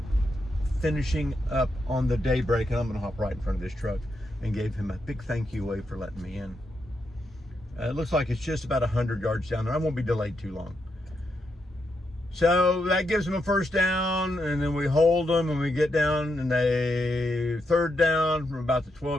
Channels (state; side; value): normal; both; correlation 0.82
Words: finishing up on the daybreak, and I'm going to hop right in front of this truck and gave him a big thank you wave for letting me in. It looks like it's just about 100 yards down there. I won't be delayed too long. So that gives them a 1st down, and then we hold them, and we get down, and they 3rd down from about the